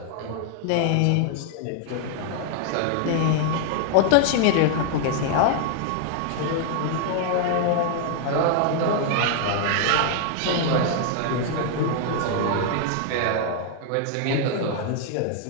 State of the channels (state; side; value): different; both; correlation 0.00